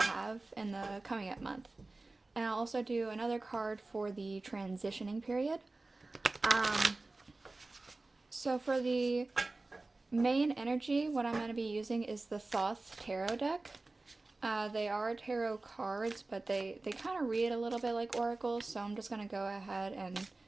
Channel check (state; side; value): quieter; left; 3.2 dB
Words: in the coming up month. And I'll also do another card for the transitioning period. So for the main energy, what I'm going to be using is the Thoth tarot deck. They are tarot cards, but they kind of read a little bit like oracles, so I'm just going to go ahead and